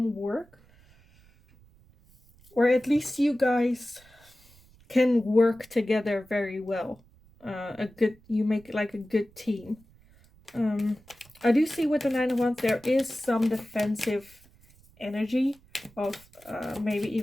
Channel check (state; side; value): noise; right; rumble, 28 dB below the sound